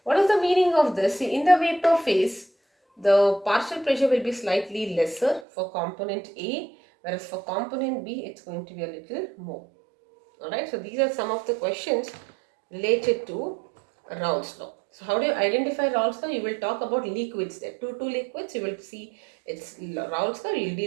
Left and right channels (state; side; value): drops out; left; at 5.5 s